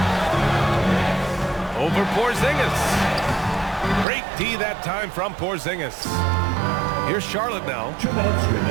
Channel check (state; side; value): drops out; left; at 4.0 s